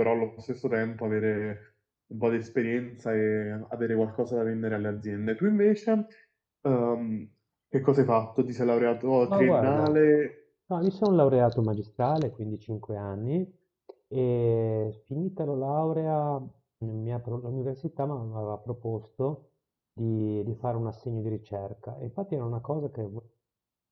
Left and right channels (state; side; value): identical; both; correlation 1.00